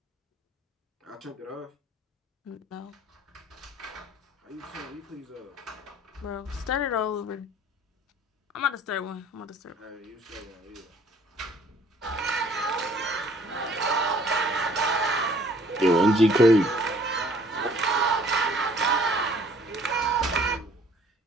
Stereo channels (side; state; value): both; normal; correlation 0.56